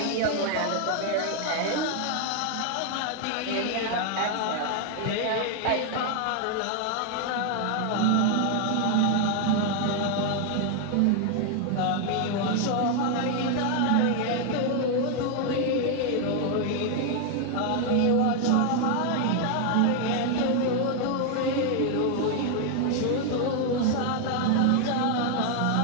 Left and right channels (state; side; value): different; both; correlation 0.00